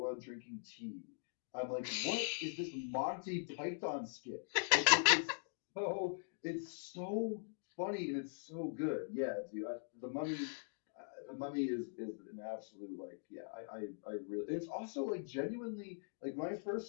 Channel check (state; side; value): silent; right; digital silence